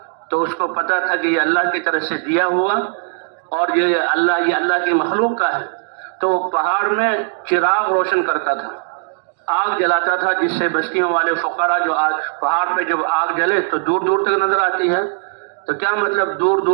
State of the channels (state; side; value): silent; left; digital silence